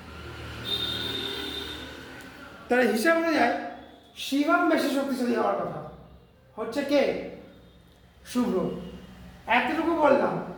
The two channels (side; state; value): both; identical; correlation 1.00